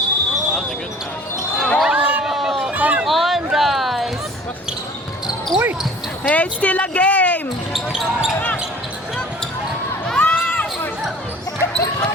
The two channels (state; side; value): normal; both; correlation 0.48